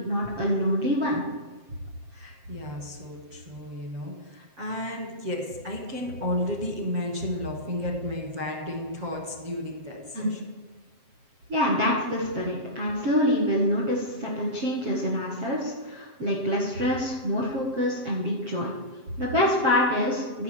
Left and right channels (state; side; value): late; left; 7.6 ms